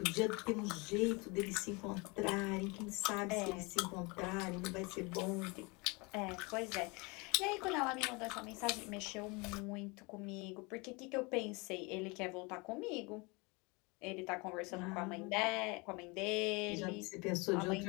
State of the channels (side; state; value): right; quieter; 27.7 dB